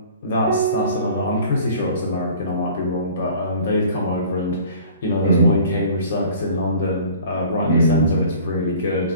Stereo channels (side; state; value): both; inverted; correlation -0.47